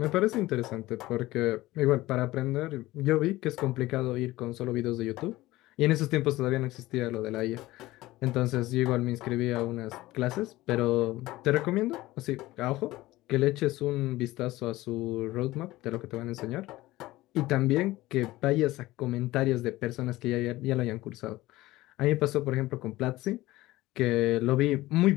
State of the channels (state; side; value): quieter; right; 17.9 dB